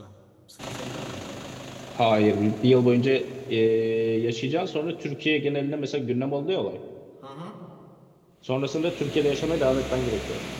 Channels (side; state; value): both; identical; correlation 1.00